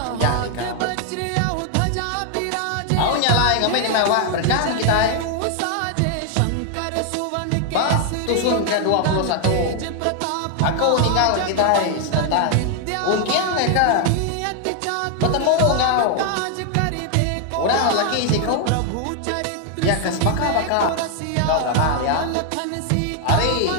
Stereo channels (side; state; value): both; different; correlation 0.00